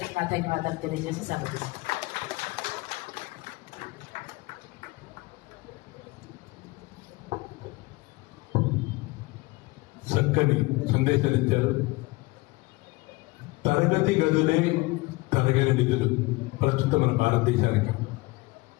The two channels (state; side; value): quieter; right; 23.1 dB